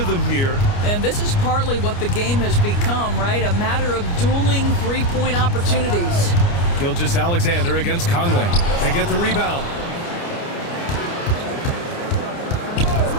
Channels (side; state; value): right; late; 29 ms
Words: here. And this is partly what the game has become, right? A matter of dueling three-point opportunities. Gilgeous-Alexander against Conley. They get the rebound.